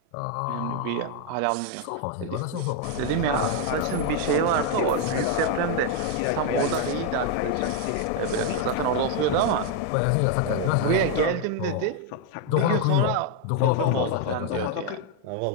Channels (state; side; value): different; both; correlation 0.01